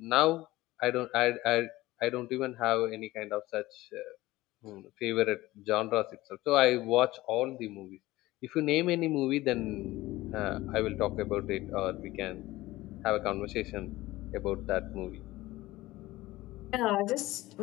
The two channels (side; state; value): right; quieter; 18.1 dB